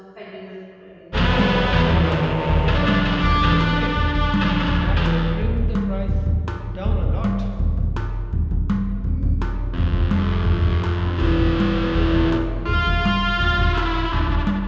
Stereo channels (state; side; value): identical; both; correlation 1.00